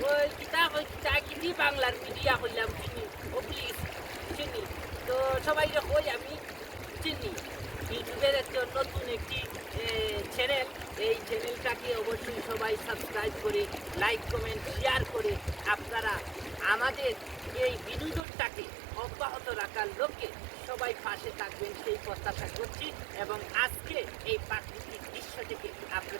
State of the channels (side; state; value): left; drops out; at 18.2 s